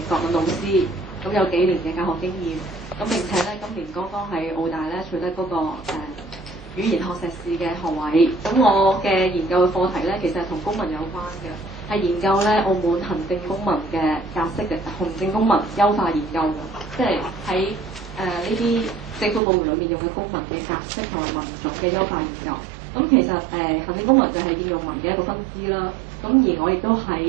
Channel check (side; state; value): left; drops out; at 19.4 s